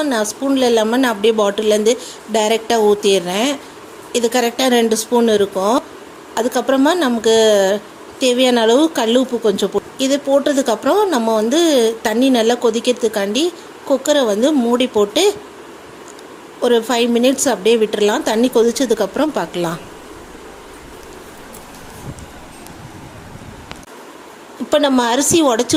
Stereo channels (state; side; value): identical; both; correlation 1.00